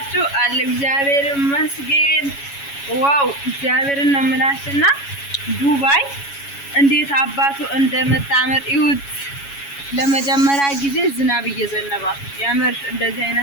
አለ እግዚአብሔር ይመስገን። ዋው እግዚአብሔርን ነው የምላችሁና ዱባይ እንዴት አባቱ እንደምታምር ይሁት። ለመጀመሪያ ጊዜ ዝናብ እየዘነበ ያምር። እንደዚህ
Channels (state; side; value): late; right; 7.2 ms